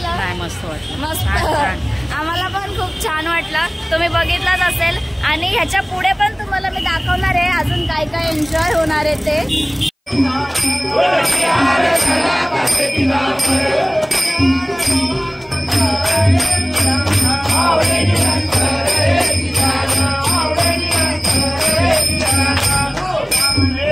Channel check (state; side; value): identical; both; correlation 1.00